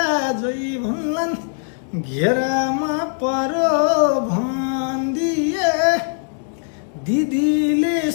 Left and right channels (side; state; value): right; silent; digital silence